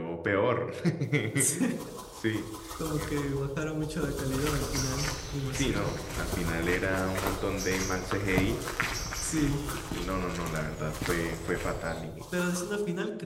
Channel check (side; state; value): both; identical; correlation 1.00